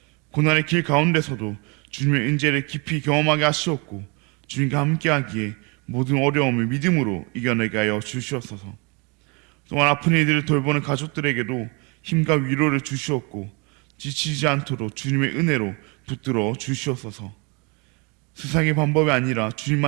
고난의 길 가운데서도 주님의 은혜를 깊이 경험하게 하시옵고 주님과 함께하기에 모든 어려움을 믿음으로 이겨내게 하여 주시옵소서. 또한 아픈 이들을 돌보는 가족들에게도 힘과 위로를 주시옵고 지치지 않도록 주님의 은혜로 붙들어 주시옵소서. 세상의 방법이 아니라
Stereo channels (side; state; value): left; quieter; 30.9 dB